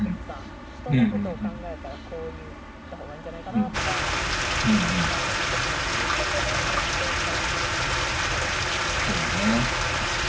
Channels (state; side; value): identical; both; correlation 1.00